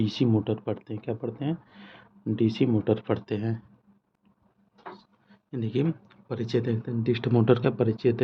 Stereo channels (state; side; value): identical; both; correlation 1.00